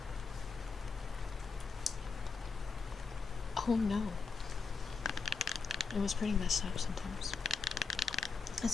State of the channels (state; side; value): quieter; right; 4.8 dB